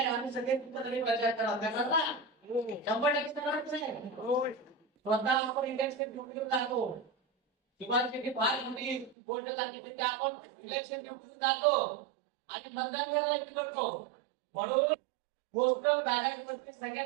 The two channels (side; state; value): left; drops out; at 9.2 s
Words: आम्ही सगळे प्रचार करा. 100% स्वतः आपण इलेक्शन ड्युटीवर जातो. शिवाजी फार मोठी गोष्ट सांगितली की आपण इलेक्शन ड्युटीवर जातो आणि मतदान करायला करतो. म्हणून गोष्ट बॅलन्स वरती